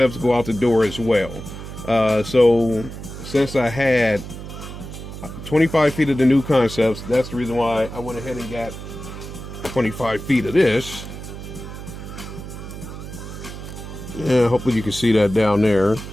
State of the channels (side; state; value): right; noise; hum, 11 dB below the sound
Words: go out the door as well. So since I had 25 feet of the New Concepts, that's the reason why I went ahead and got 25 feet of this. Yeah, hopefully you can see that down there.